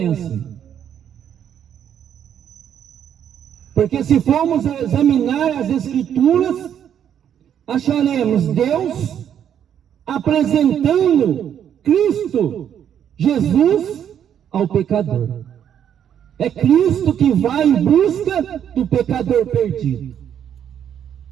assim. Porque se formos examinar as Escrituras, acharemos Deus apresentando Cristo, Jesus, ao pecador. É Cristo que vai em busca do pecador perdido.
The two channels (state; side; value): quieter; left; 9.3 dB